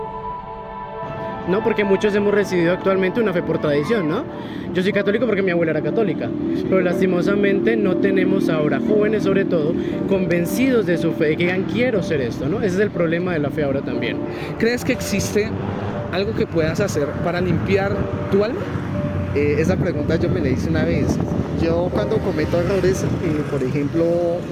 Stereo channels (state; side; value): identical; both; correlation 1.00